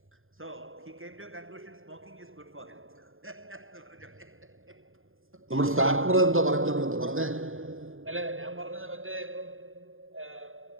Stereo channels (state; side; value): late; left; 0.59 ms